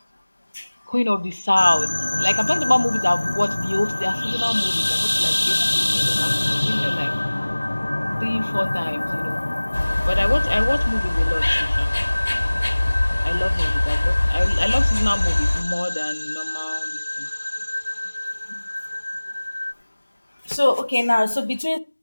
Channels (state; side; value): inverted; both; correlation -1.00